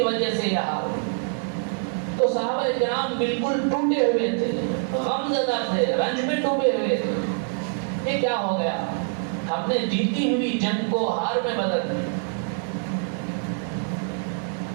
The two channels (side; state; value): left; silent; 62 dB below the other